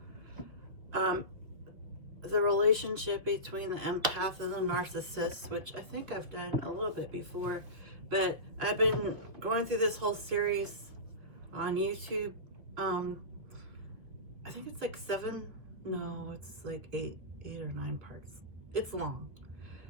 um, the relationship between the empath and the narcissist, which I think I've done a little bit before, but I've been going through this whole series on YouTube. Um, I think it's like it's like eight or nine parts. It's long.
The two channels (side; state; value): left; late; 2.6 ms